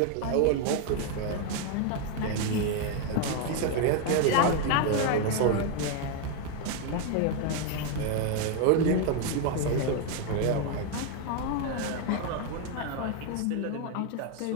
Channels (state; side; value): different; both; correlation 0.01